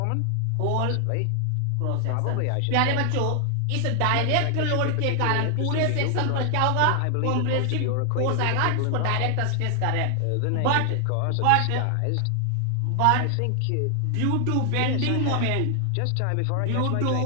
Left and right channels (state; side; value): different; both; correlation 0.00